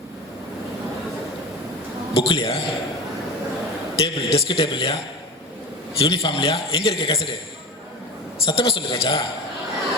புக்லையா? டேபிள், டெஸ்க் டேபிள்லையா? யூனிஃபார்ம்லையா? எங்கே இருக்கு கசடு? சத்தமாக சொல்லு ராஜா.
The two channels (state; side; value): normal; both; correlation 0.29